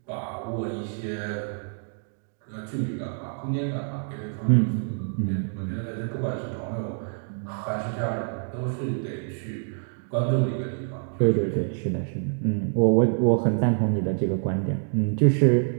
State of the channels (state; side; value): silent; left; 61 dB below the other